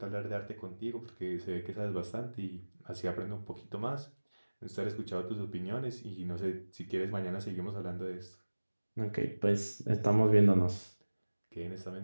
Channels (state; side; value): inverted; both; correlation -1.00